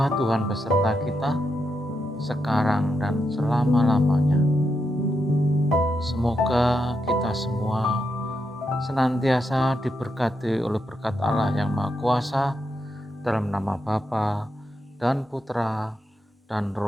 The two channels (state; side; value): normal; both; correlation 0.83